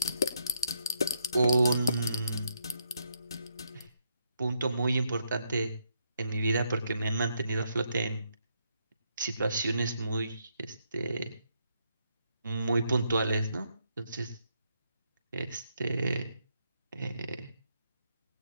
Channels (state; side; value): inverted; both; correlation -0.77